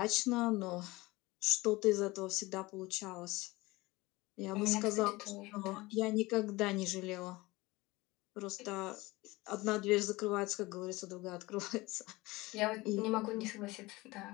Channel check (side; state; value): right; quieter; 21.3 dB